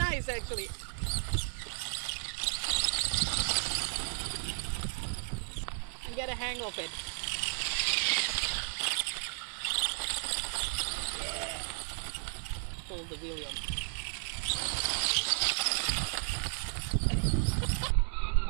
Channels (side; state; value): left; silent; 55 dB below the other